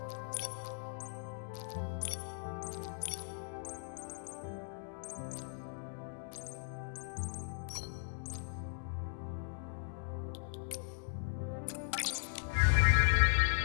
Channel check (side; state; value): right; silent; digital silence